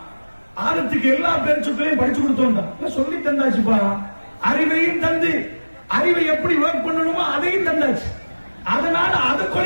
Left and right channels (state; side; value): inverted; both; correlation -1.00